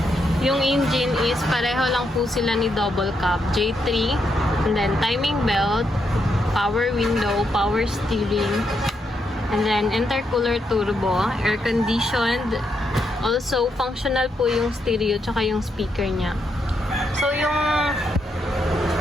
Yung engine is pareho lang po sila ni double cab, J3. And then timing belt, power window, power steering. And then intercooler turbo, air conditioned. Also, functional po yung stereo tsaka yung speaker niya. So,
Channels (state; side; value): normal; both; correlation 0.80